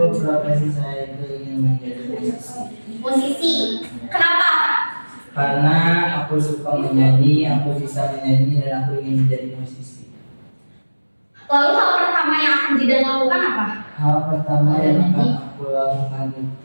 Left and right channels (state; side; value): inverted; both; correlation -1.00